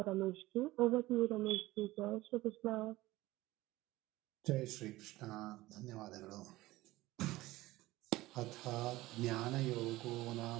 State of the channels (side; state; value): left; quieter; 18.2 dB